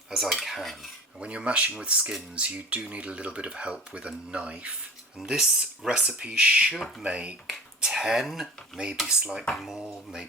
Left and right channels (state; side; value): normal; both; correlation 0.38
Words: as I can. And when you're mashing with skins, you do need a little bit of help with a knife. And this recipe should make 10, maybe slightly more,